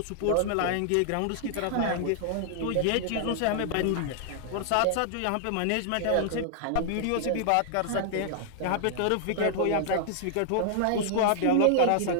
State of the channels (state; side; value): different; both; correlation 0.00